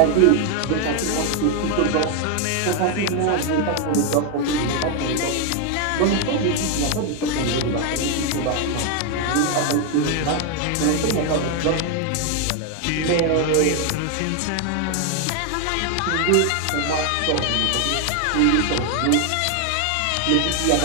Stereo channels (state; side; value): different; both; correlation 0.01